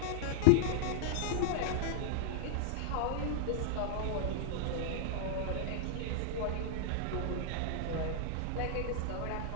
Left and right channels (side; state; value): both; different; correlation -0.01